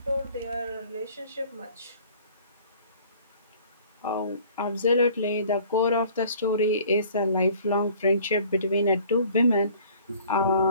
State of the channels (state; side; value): inverted; both; correlation -0.52